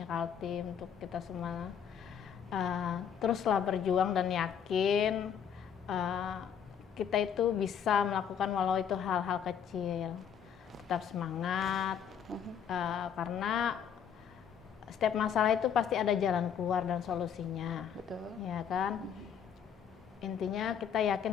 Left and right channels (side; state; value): right; quieter; 7.9 dB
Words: Kaltim, untuk kita semua teruslah berjuang dan yakin kita itu bisa melakukan walau itu hal-hal kecil. Tetap semangat karena setiap masalah itu pasti ada jalan keluar dan solusinya. Betul. Ya kan? Intinya kita